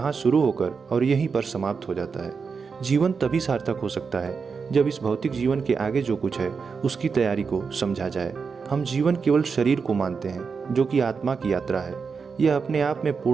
शुरू होकर और यहीं पर समाप्त हो जाता है। जीवन तभी सार्थक हो सकता है जब इस भौतिक जीवन के आगे जो कुछ है उसकी तैयारी को समझा जाए। हम जीवन केवल शरीर को मानते हैं जो कि आत्मा की यात्रा है। यह अपने आप में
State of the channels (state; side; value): quieter; left; 5.4 dB